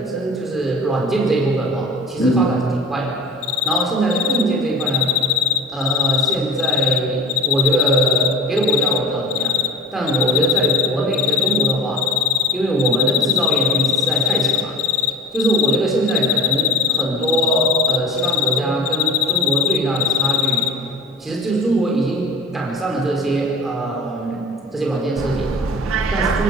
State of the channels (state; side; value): normal; both; correlation 0.36